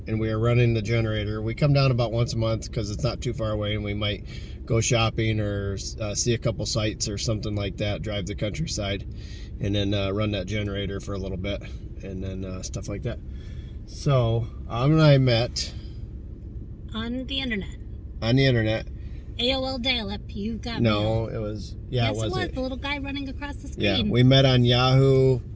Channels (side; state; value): both; identical; correlation 1.00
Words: and we are running the generator. We come down about once a month because it's not too far away, and we might go shopping or see a couple sites or something like that, drive the countryside, and then run that generator for a little bit, and then stuff like that. So, and I met on the internet. AOL dial-up, you got me. No, it was, yeah, yes, it was the little guy running across the screen. Yeah, we met on Yahoo.